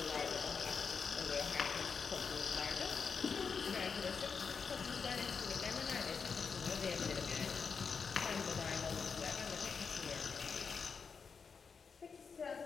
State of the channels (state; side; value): quieter; right; 5.7 dB